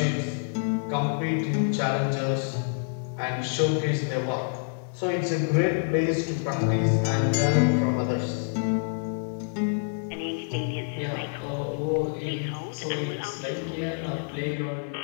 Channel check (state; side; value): silent; right; digital silence